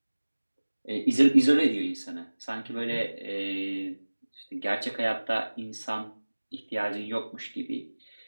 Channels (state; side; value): inverted; both; correlation -1.00